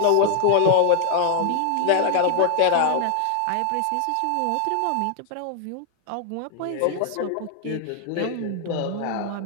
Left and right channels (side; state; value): both; different; correlation 0.00